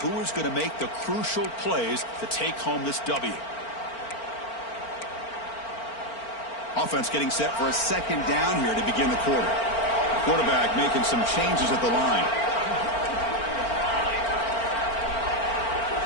is going to make the crucial plays to take home this W? Offense getting set for a second down here to begin the quarter. Quarterback making some changes at the line.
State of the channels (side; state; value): right; late; 4.4 ms